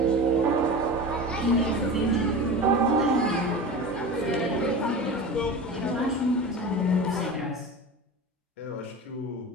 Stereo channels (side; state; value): both; normal; correlation 0.30